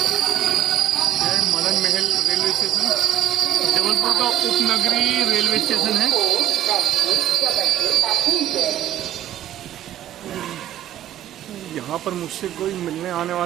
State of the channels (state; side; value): quieter; left; 12.0 dB